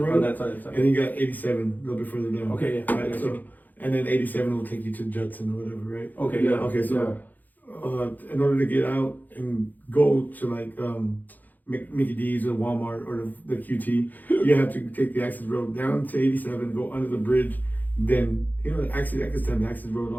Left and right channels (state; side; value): late; right; 0.084 ms